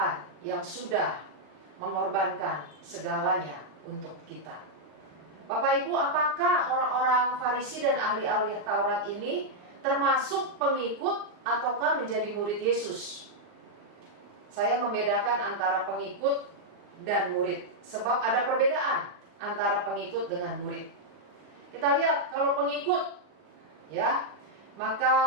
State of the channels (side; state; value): left; late; 38 ms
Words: yang sudah mengorbankan segalanya untuk kita. Bapak Ibu, apakah orang-orang Farisi dan ahli-ahli Taurat ini termasuk pengikut ataukah menjadi murid Yesus? Saya membedakan antara pengikut dan murid, sebab ada perbedaan antara pengikut dengan murid. Kita lihat kalau pengikut, maka